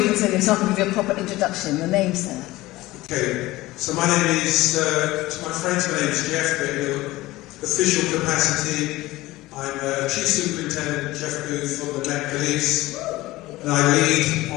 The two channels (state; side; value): quieter; right; 18.4 dB